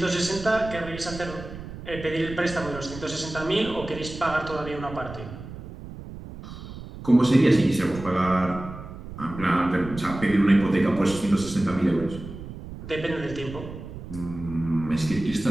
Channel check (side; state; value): right; noise; rumble, 12 dB below the sound